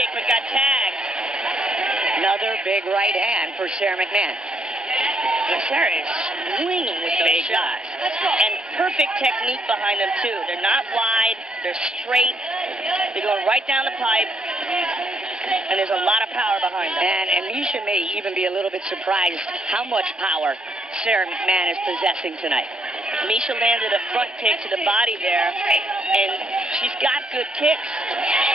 but got tagged. Another big right hand for Sara McMahon. And Sarah is swinging with those shots. And perfect technique behind them, too. They're not wide. They're straight. They're going right down the pipe. And there's a lot of power behind them. And Miesha may even be a little bit surprised how much power Sara McMahon is possessing tonight. Miesha landed a front kick to the body there. And she's got good kicks.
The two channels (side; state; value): both; normal; correlation 0.71